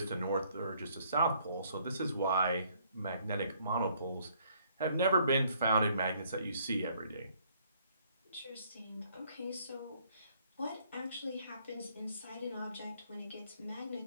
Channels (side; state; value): both; inverted; correlation -0.65